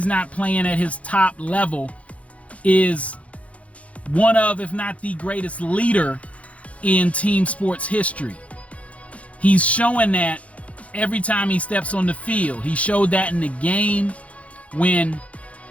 not playing at his top level, is one of, if not the greatest leader in team sports history. He's showing that every time he steps on the field. He showed that in the game when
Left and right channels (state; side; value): late; right; 0.065 ms